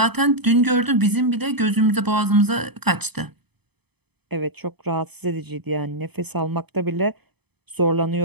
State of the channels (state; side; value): late; left; 0.98 ms